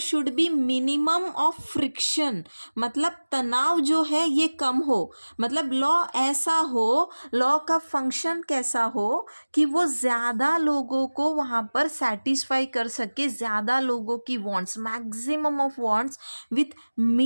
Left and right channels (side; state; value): both; inverted; correlation -1.00